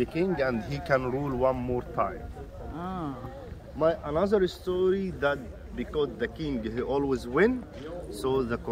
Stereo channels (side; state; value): both; identical; correlation 1.00